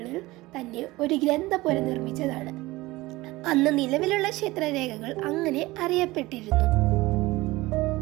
തന്നെ ഒരു ഗ്രന്ഥപുര നിർമ്മിച്ചതാണ്. അന്ന് നിലവിലുള്ള ക്ഷേത്രരേഖകൾ അങ്ങനെ അറിയപ്പെട്ടിരുന്നു.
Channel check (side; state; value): left; quieter; 19.8 dB